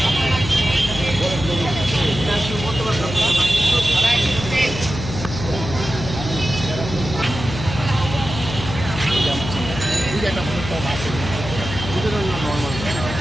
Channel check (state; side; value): noise; left; hum, 8 dB below the sound